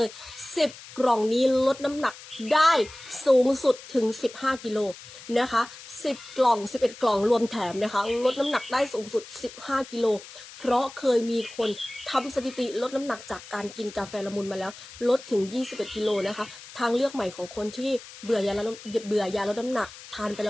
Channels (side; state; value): left; noise; hiss, 17 dB below the sound